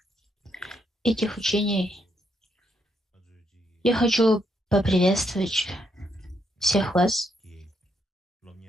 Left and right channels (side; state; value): both; normal; correlation 0.76